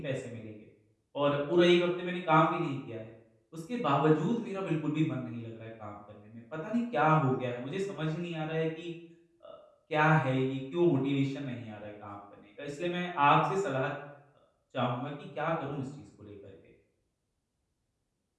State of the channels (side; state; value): both; identical; correlation 1.00